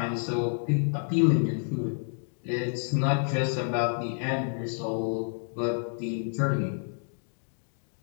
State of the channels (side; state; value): right; silent; digital silence